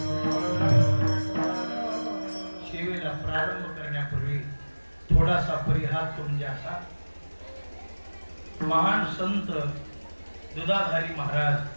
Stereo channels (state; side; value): inverted; both; correlation -1.00